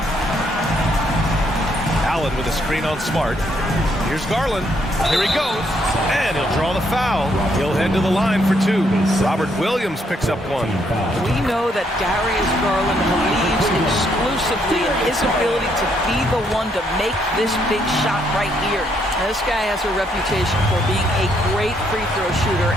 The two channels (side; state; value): both; normal; correlation 0.73